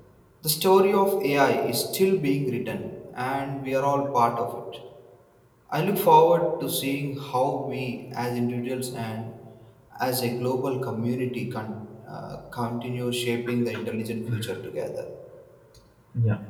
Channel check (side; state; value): both; identical; correlation 1.00